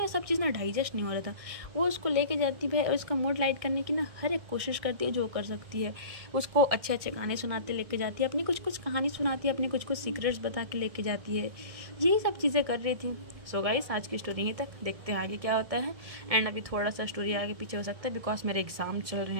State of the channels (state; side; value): late; left; 1.6 ms